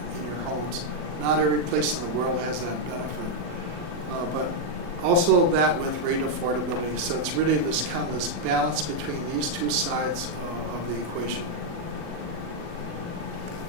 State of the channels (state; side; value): late; left; 40 ms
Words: in your homes. Not every place in the world has that benefit, but also that with rate affordability. So it's really this kind of this balance between these two sides of the equation.